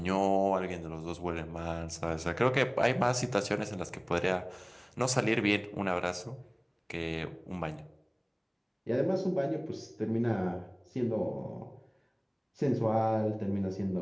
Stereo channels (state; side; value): identical; both; correlation 1.00